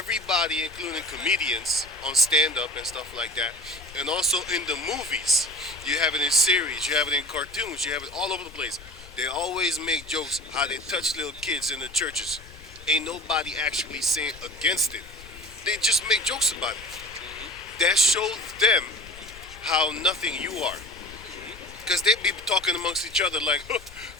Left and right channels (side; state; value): left; noise; rumble, 18 dB below the sound